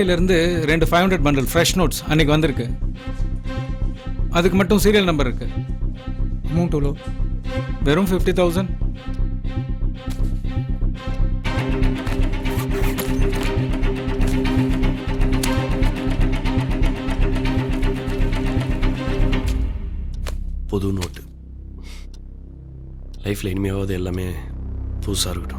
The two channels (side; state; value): both; identical; correlation 1.00